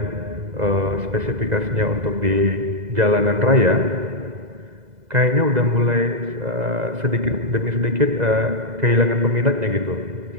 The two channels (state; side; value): late; left; 2.0 ms